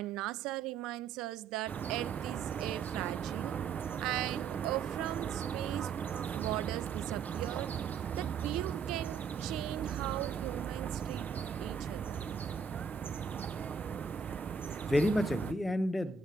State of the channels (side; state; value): left; quieter; 5.5 dB